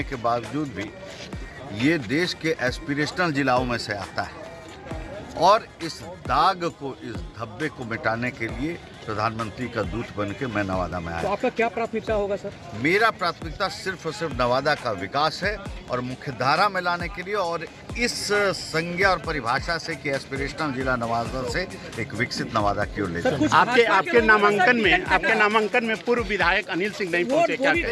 के बावजूद भी ये देश के एस्पिरेशनल जिलाओं में से आता है। और इस दाग को, इस धब्बे को मिटाने के लिए प्रधानमंत्री का दूत बन के मैं नवादा में आया। तो आपका क्या प्राथमिकता होगा सर? मेरा प्राथमिकता सिर्फ और सिर्फ नवादा का विकास है और मुख्य धारा में लाने के लिए, और इस संज्ञा और परिभाषा से कि एस्पिरेशनल जिला नवादा से एक विकसित नवादा की ओर ले जाए। आपके नामांकन में पूर्व विधायक अनिल सिंह नहीं पहुंचे क्या?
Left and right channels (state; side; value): identical; both; correlation 1.00